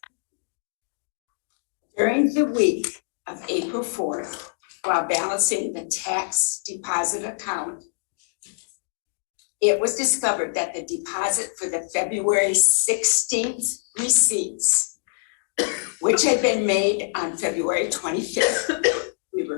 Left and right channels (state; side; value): silent; right; digital silence